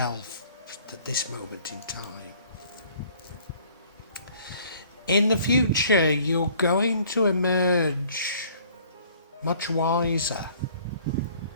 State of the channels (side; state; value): both; inverted; correlation -0.56